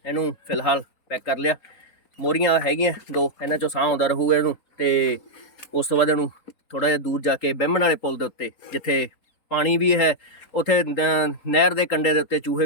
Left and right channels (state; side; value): late; right; 3.8 ms